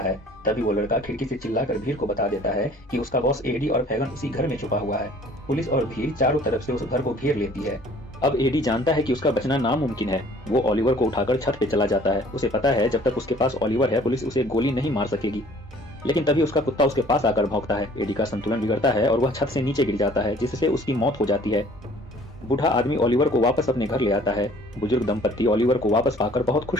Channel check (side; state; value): both; normal; correlation 0.53